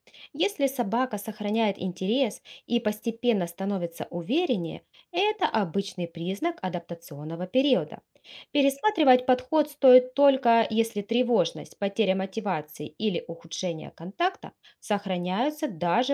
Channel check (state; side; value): identical; both; correlation 1.00